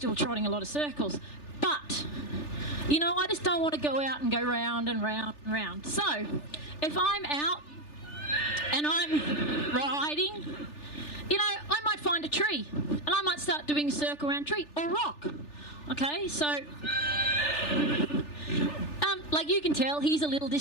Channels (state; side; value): late; right; 3.4 ms